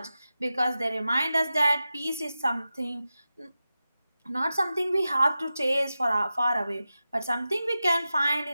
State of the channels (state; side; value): inverted; both; correlation -0.93